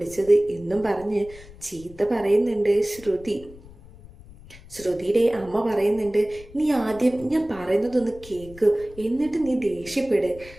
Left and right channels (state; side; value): noise; left; rumble, 20 dB below the sound